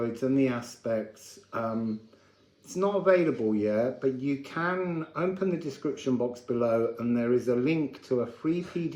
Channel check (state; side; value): identical; both; correlation 1.00